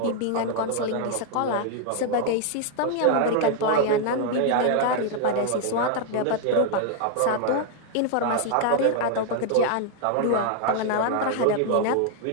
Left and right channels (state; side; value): different; both; correlation 0.00